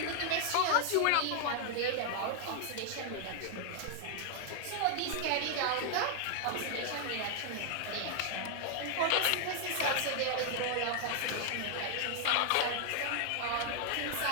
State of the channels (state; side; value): different; both; correlation 0.00